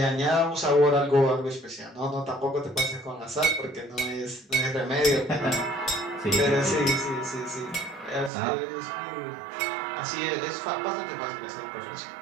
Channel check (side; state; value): left; drops out; at 8.3 s